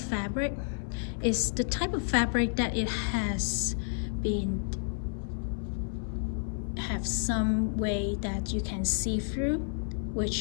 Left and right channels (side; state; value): right; silent; 57 dB below the other